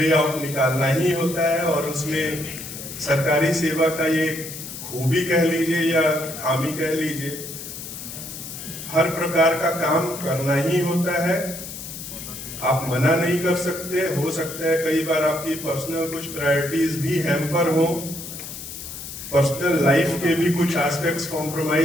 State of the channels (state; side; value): noise; left; hiss, 10 dB below the sound